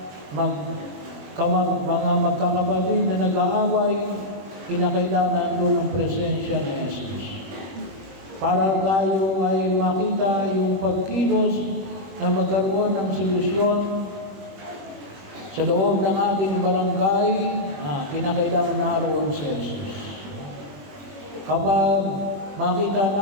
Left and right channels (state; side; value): late; left; 21 ms